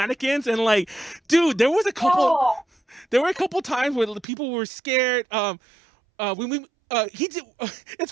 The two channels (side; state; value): left; drops out; at 4.2 s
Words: and like, dude, there were a couple times where the people were scared. It's